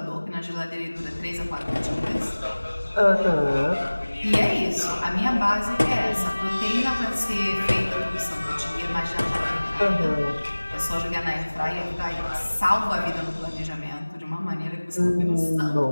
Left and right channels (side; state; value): both; inverted; correlation -1.00